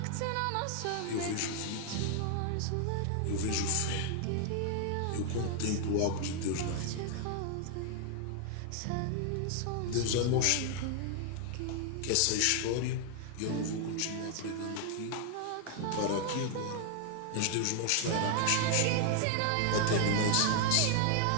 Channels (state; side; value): different; both; correlation 0.00